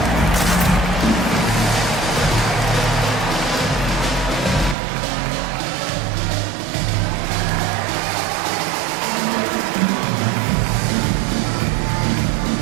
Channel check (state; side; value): drops out; left; at 4.8 s